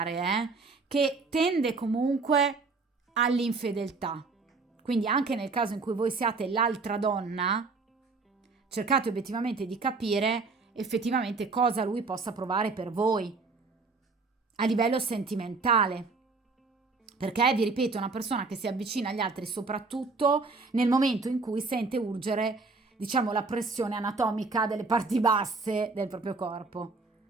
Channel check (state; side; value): quieter; left; 4.0 dB